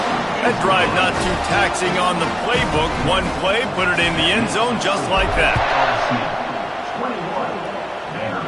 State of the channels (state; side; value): identical; both; correlation 1.00